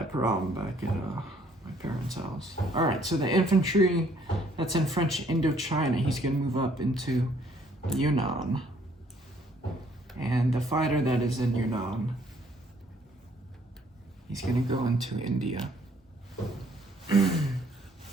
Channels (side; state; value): both; normal; correlation 0.63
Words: problem back at my parents' house. Alright, so the infantry that's in French Indochina, he's gonna move up into Yunnan. And the fighter that is in Yunnan, he's gonna go into India.